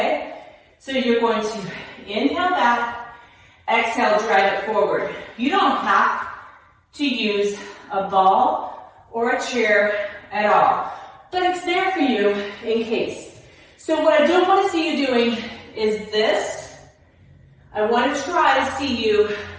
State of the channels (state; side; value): identical; both; correlation 1.00